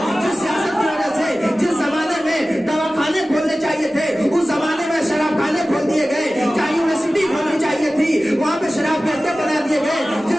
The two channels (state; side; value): normal; both; correlation 0.96